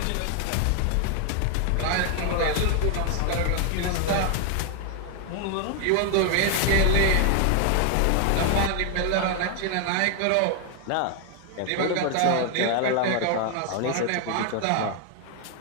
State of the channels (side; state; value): both; different; correlation 0.00